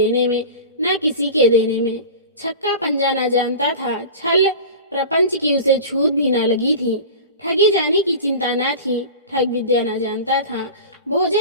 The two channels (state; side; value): inverted; both; correlation -0.33